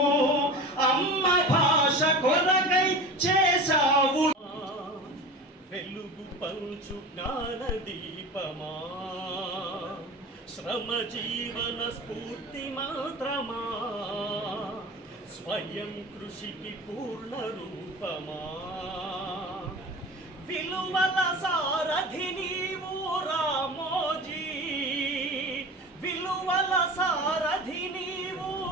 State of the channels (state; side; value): normal; both; correlation 0.33